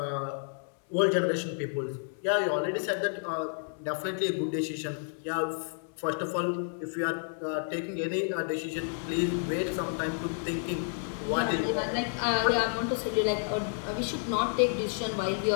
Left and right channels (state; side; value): silent; right; digital silence